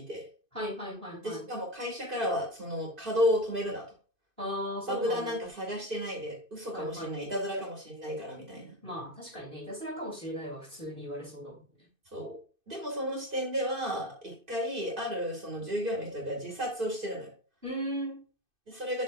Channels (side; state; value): left; late; 2.5 ms